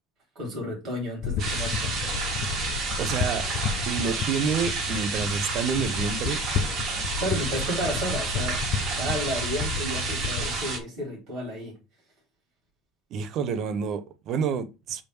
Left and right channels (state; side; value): normal; both; correlation 0.37